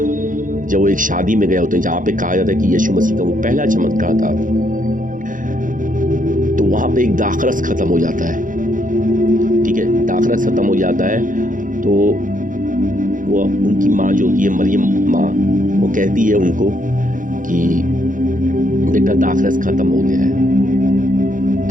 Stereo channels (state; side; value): late; left; 0.38 ms